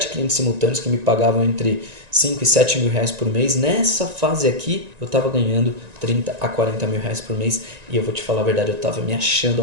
clientes simultâneos que me pagavam entre 5 e 7 mil reais por mês. Nessa fase aqui, eu estava ganhando 30 a 40 mil reais por mês. E eu vou te falar a verdade, eu estava me achando a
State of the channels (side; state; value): left; late; 1.9 ms